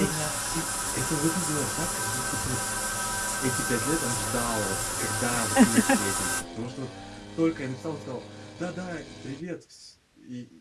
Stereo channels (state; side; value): identical; both; correlation 1.00